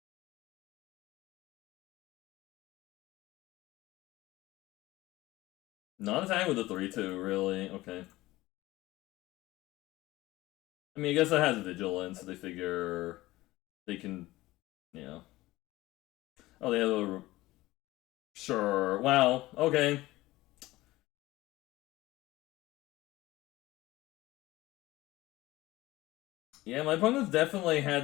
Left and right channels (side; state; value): right; quieter; 18.2 dB